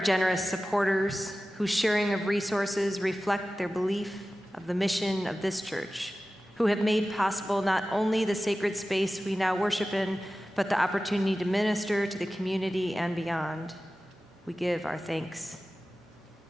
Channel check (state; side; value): normal; both; correlation 0.95